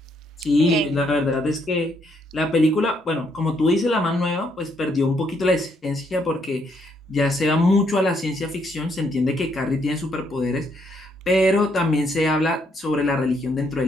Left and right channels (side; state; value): both; normal; correlation 0.73